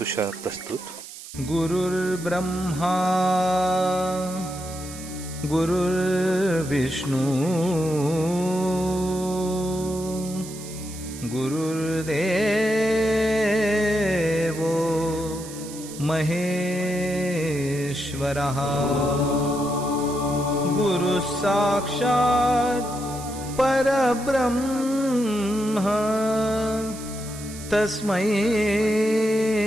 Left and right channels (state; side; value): noise; right; hiss, 14 dB below the sound